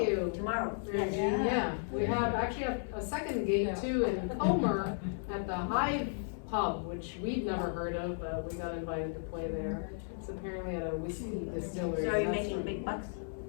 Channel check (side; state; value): right; silent; 55 dB below the other